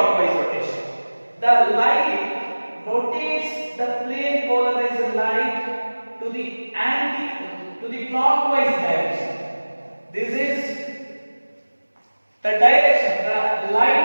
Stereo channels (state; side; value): inverted; both; correlation -1.00